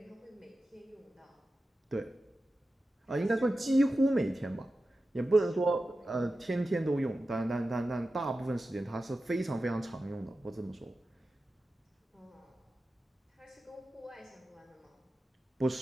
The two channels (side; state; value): both; normal; correlation 0.93